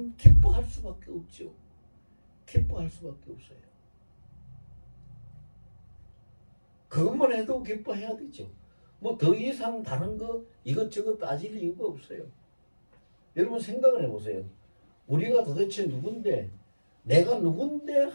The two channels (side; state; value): both; inverted; correlation -1.00